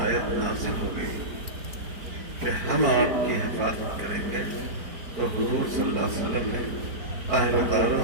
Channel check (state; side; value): late; left; 5.1 ms